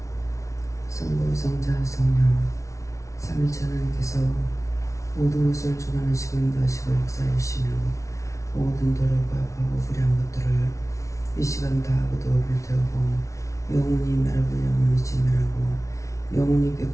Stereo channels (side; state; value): right; late; 0.15 ms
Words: 성부, 성자, 성령 삼일체 하나님께서 모든 것을 주관하시고 인도하시고 역사해 주시며 모든 도로가 과거 불의한 것들을 이 시간 다 거두어 불태우고 영원히 멸하고 영원히 진멸하고 영원히